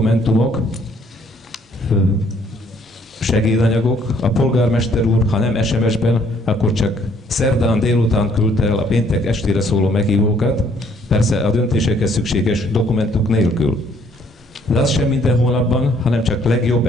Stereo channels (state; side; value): normal; both; correlation 0.64